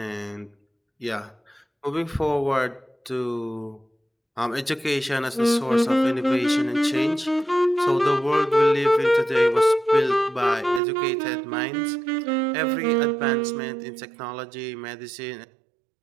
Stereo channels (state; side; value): drops out; left; at 10.8 s